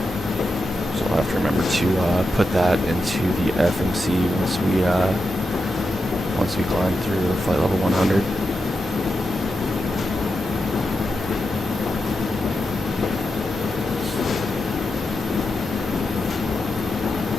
I'll have to remember to put that into the FMC once we climb through flight level 100.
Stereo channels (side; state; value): both; normal; correlation 0.88